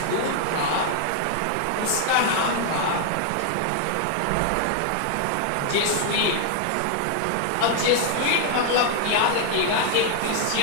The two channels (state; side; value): different; both; correlation 0.00